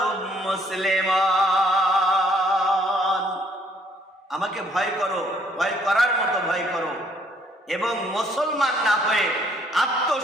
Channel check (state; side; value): normal; both; correlation 0.65